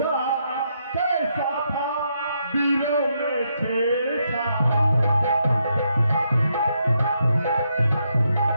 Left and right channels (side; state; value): both; inverted; correlation -0.78